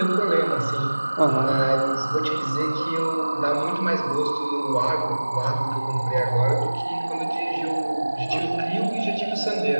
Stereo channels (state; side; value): inverted; both; correlation -1.00